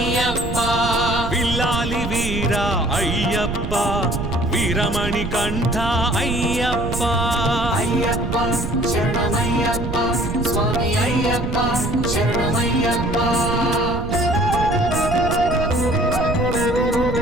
పిల్లాలి వీర అయ్యప్ప వీరమణి కంఠ అయ్యప్ప అయ్యప్ప శరణమయ్యప్ప స్వామి అయ్యప్ప శరణమయ్యప్ప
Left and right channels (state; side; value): noise; right; rumble, 4 dB below the sound